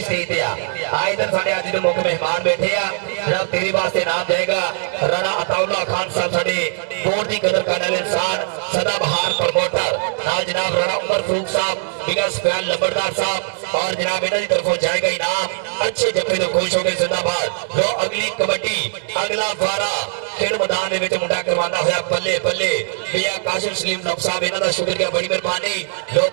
पे आ इधर साढ़े आज जो मुख्य मेहमान बैठे आ जनाब तेरे वास्ते नाम जाएगा राणा अताउल्ला खान साहब साढ़े बोर्ड की कदर करने वाले इंसान सदाबहार प्रमोटर नाल जनाब राणा उमर फारूक साहब बिगस फैन लंबरदार साहब और जनाब इन्हों की तरफों जाएगा इनाम अच्छे जफे तो खुश हो गए जिंदाबाद जो अगली कबड्डी अगला वारा खेल मैदान ਦੇ ਵਿੱਚ ਮੁੰਡਾ ਕਰਵਾਉਂਦਾ ਹੋਇਆ ਬੱਲੇ ਬੱਲੇ ਪਿਆ ਕਾਸ਼ਿਮ ਸਲੀਮ ਨਫ ਸਾਹਿਬ ਇਹਨਾਂ ਦਾ ਸ਼ੁਕਰੀਆ ਬੜੀ ਮਿਹਰਬਾਨੀ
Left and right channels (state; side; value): silent; left; digital silence